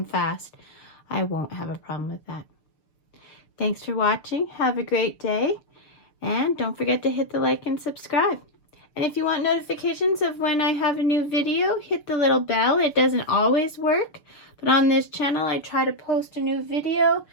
fast, I won't have a problem with that. Thanks for watching. Have a great day. And don't forget to hit the like and subscribe. And if you want notifications of when I have a new video, hit the little bell. It doesn't always work, but on this channel, I try to post a new video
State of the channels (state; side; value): late; right; 6.7 ms